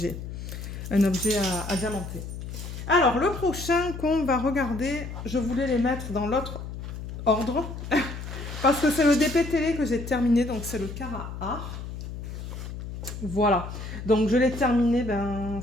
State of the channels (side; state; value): left; noise; hum, 9 dB below the sound